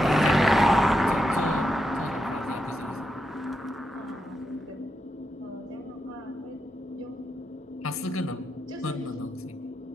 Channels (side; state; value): both; normal; correlation 0.85